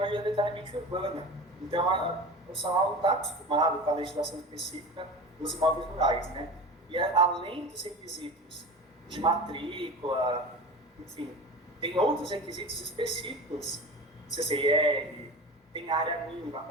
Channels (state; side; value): normal; both; correlation 0.32